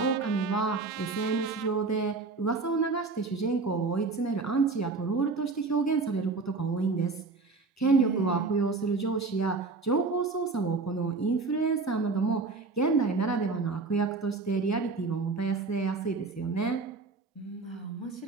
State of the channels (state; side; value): quieter; left; 4.0 dB